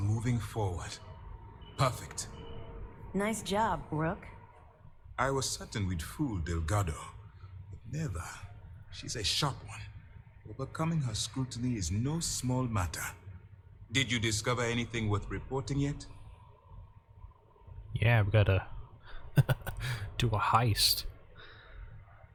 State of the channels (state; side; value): identical; both; correlation 1.00